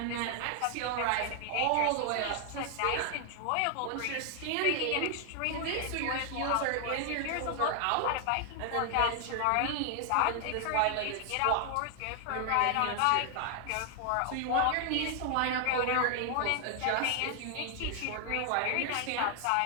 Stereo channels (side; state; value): both; different; correlation 0.00